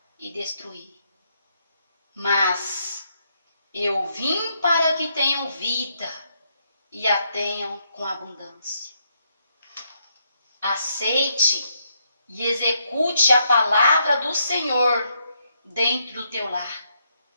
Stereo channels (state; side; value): inverted; both; correlation -0.77